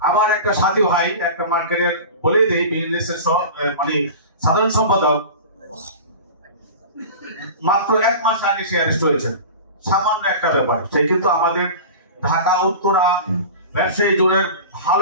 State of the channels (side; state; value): both; inverted; correlation -0.33